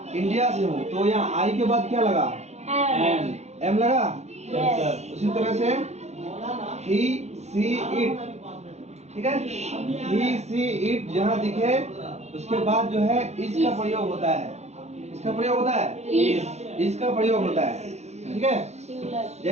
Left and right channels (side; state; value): left; late; 0.32 ms